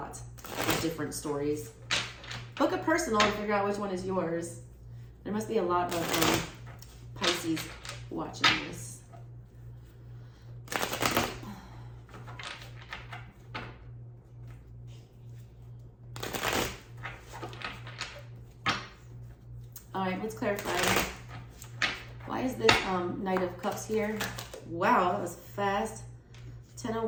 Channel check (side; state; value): both; identical; correlation 1.00